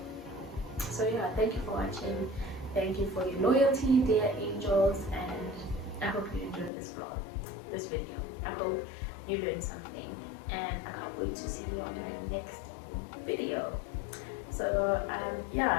yeah, thank you for watching. Thank you for your loyalty, dear angels, and I hope you enjoyed this vlog, this video. I hope you learned something, and I can't wait to see you on my next video. So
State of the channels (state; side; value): drops out; right; at 6.7 s